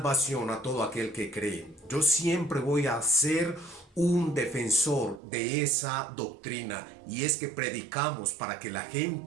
a todo aquel que cree. Yo siempre voy a ser un defensor de esa doctrina, y es que predicamos para que la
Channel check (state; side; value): drops out; left; at 5.2 s